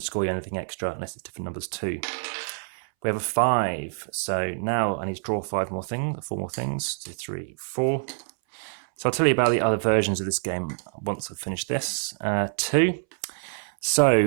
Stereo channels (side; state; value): left; silent; 61 dB below the other